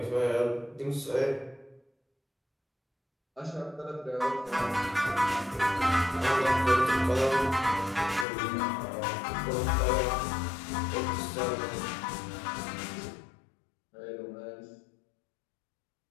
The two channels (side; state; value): right; drops out; at 8.2 s